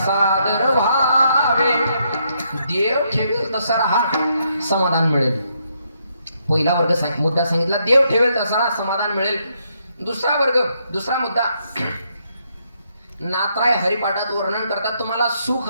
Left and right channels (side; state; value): both; inverted; correlation -0.75